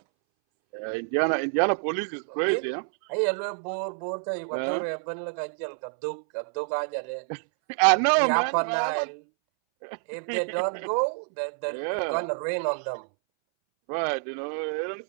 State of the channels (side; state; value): left; silent; 60 dB below the other